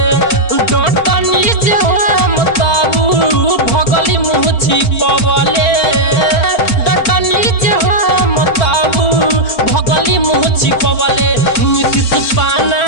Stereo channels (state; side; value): late; right; 4.4 ms